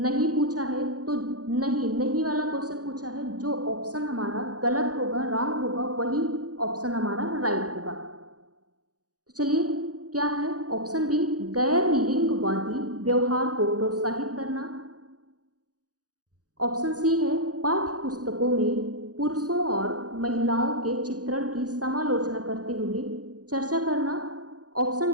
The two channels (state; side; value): late; left; 0.67 ms